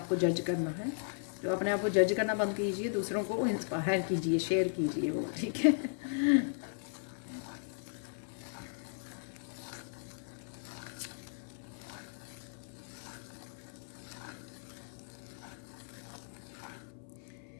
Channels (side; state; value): right; silent; 53 dB below the other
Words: को जज करना है। तो अपने आप को जज करना बंद कीजिए, दूसरों को इंस्पायर कीजिए, शेयर कीजिए वो। ठीक है,